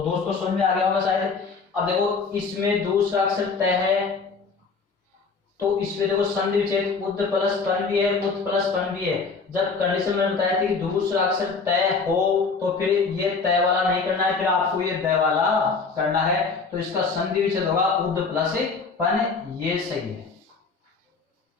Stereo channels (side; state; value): right; quieter; 4.7 dB